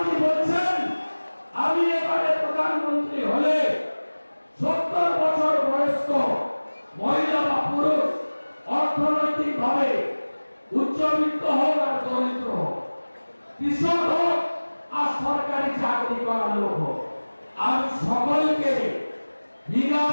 বলছেন আমি এবারে প্রধানমন্ত্রী হলে 70 বছর বয়স্ক মহিলা বা পুরুষ অর্থনৈতিক ভাবে উচ্চবিত্ত হোক আর দরিদ্র হোক, কৃষক হোক আর সরকারি চাকরি করা লোক হোক, আমি সকলকে বিনা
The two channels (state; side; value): inverted; both; correlation -1.00